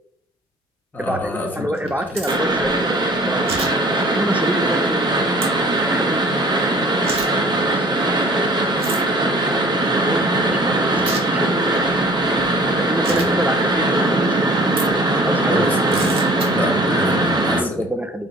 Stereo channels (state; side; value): normal; both; correlation 0.50